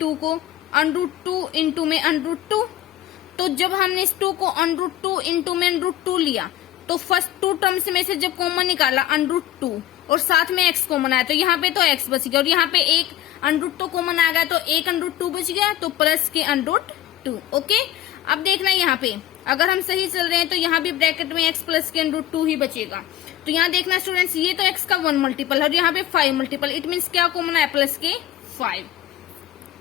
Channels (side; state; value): right; quieter; 12.8 dB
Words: को √2 इंटू में √2। तो जब हमने इस 2 को √2 इंटू में √2 लिया, तो फर्स्ट 2 टर्म्स में से जब कॉमन निकाला √2 और साथ में x कॉमन आया, तो यहाँ पे तो x बच गया, और यहाँ पे एक √2 कॉमन आ गया, तो एक √2 बच गया, तो प्लस के √2। ओके, अब देखना यहाँ पे अगर हम सही चल रहे हैं तो यहाँ भी ब्रैकेट में x प्लस के √2 ही बचेगा। तो यहाँ देखना स्टूडेंट्स, ये तो x का 1 मल्टीपल है और यहाँ पे 5 मल्टीपल, इट मीन्स क्या कॉमन है, प्लस के